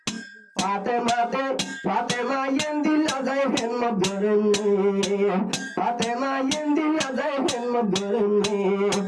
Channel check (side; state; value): both; identical; correlation 1.00